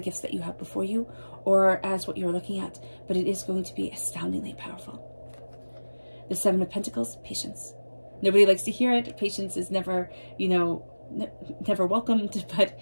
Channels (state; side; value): inverted; both; correlation -1.00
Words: gifts that you have before you or as what you're looking at, but it is going to be astoundingly powerful. The Seven of Pentacles, patience. Nobody likes to hear it. Patience is never, never welcomed, but